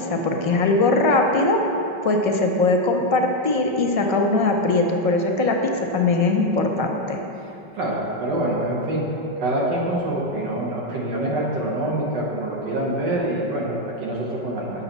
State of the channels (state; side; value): late; left; 5.2 ms